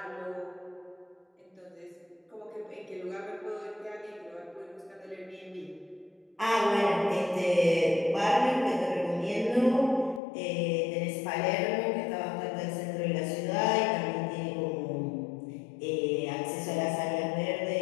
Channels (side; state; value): right; drops out; at 10.2 s